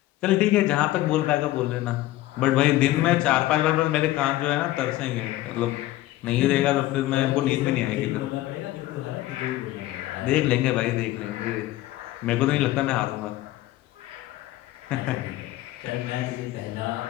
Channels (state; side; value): quieter; right; 16.1 dB